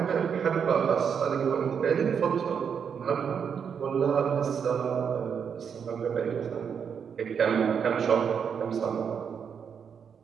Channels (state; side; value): quieter; left; 7.1 dB